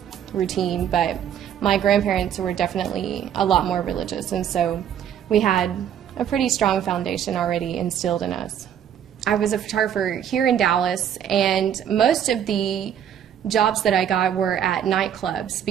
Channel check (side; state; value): left; quieter; 9.3 dB